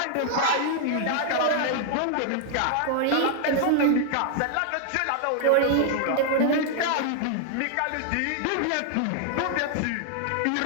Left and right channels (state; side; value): different; both; correlation 0.00